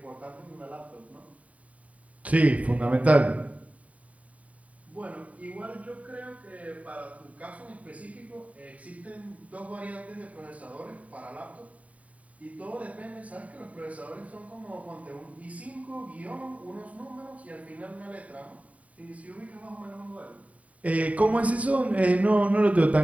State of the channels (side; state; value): left; late; 0.068 ms